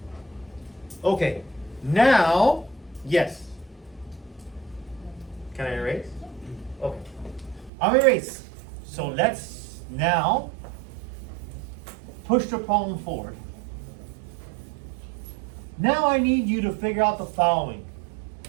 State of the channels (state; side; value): drops out; left; at 7.7 s